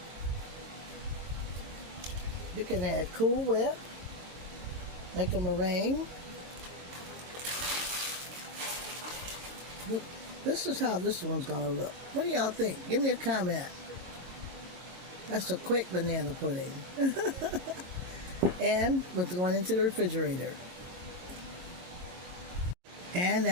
You can add Cool Whip, make a meringue. This is how this one's gonna look. What do y'all think? Give me a comment. That's a quick banana pudding. And we're going into the refrigerator. And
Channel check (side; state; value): left; late; 22 ms